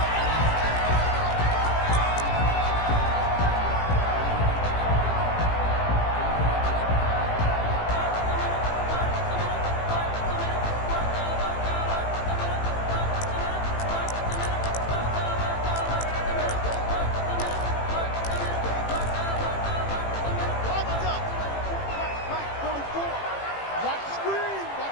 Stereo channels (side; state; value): right; late; 18 ms